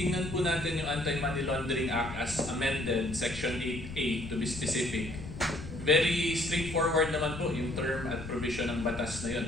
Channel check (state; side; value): noise; left; rumble, 11 dB below the sound